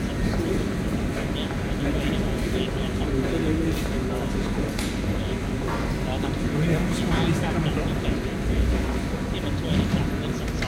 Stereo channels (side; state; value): both; identical; correlation 1.00